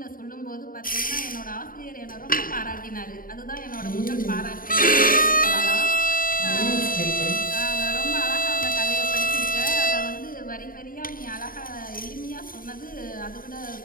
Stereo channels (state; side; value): late; right; 0.41 ms